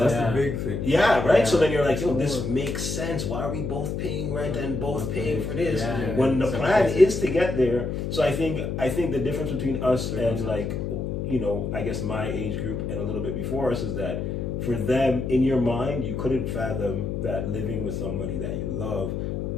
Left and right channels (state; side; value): noise; left; hum, 3 dB below the sound